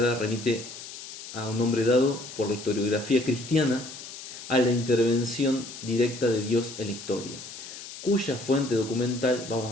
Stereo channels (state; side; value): noise; left; hiss, 12 dB below the sound